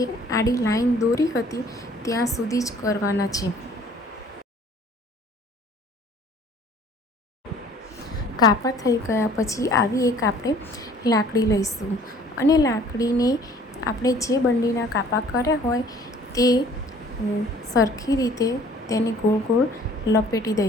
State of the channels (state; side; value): normal; both; correlation 0.54